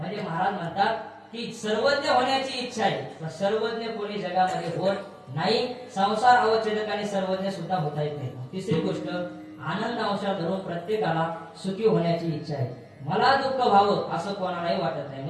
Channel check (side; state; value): both; identical; correlation 1.00